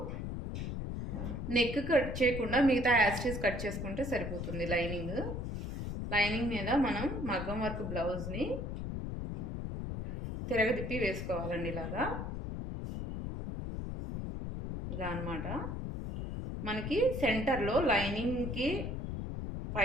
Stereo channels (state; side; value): noise; left; rumble, 4 dB below the sound